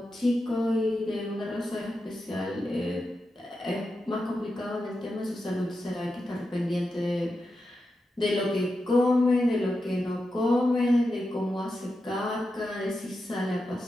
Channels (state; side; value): normal; both; correlation 0.89